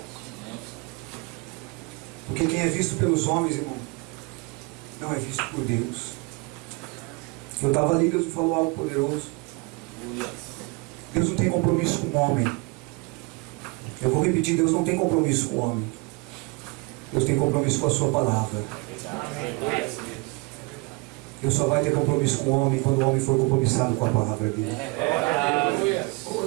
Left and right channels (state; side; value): quieter; left; 27.6 dB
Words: Porque quem é visto pelos homens, irmão, não é visto por Deus. Eu estava ali, Deus me falou algo poderoso. Deus não tem compromisso com o homem. Eu vou repetir, Deus não tem compromisso com o homem. Deus tem compromisso com a sua palavra. Deus só vai ter compromisso com o homem quando o homem for compromissado com a palavra dele.